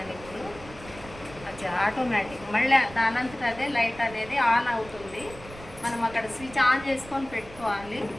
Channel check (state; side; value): noise; right; rumble, 17 dB below the sound